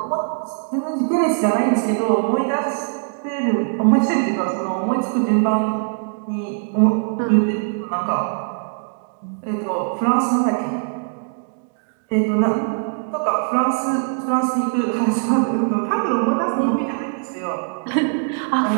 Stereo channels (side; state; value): left; silent; digital silence